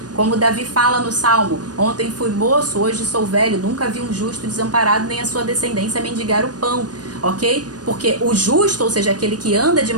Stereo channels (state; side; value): late; left; 0.69 ms